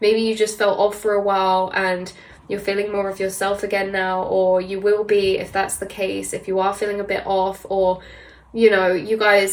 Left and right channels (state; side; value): identical; both; correlation 1.00